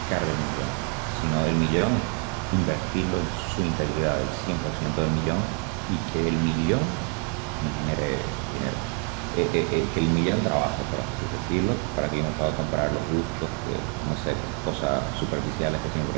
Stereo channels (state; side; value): quieter; left; 31.5 dB